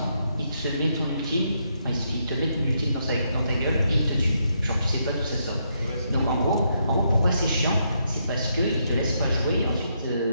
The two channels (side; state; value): both; inverted; correlation -0.78